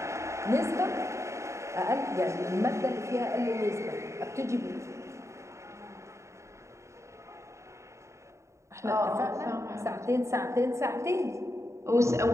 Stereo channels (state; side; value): late; left; 0.14 ms